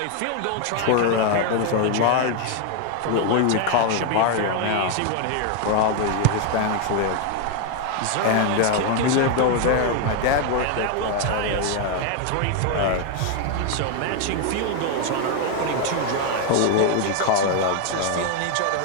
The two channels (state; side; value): different; both; correlation 0.01